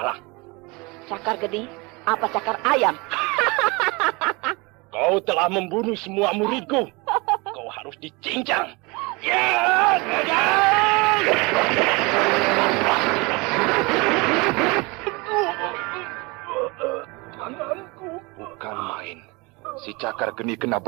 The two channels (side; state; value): left; quieter; 26.4 dB